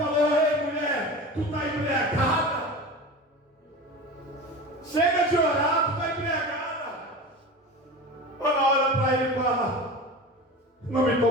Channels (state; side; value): normal; both; correlation 0.31